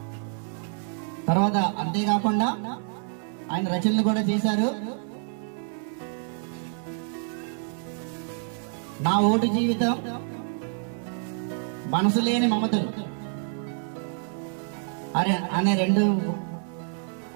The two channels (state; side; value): silent; left; 58 dB below the other